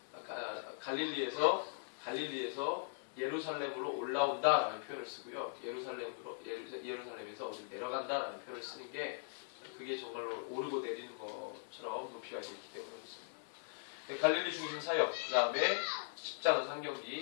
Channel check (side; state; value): right; silent; 51 dB below the other